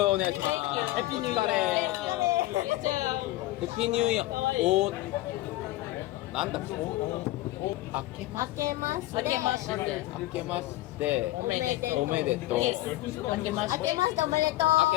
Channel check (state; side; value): quieter; right; 17.0 dB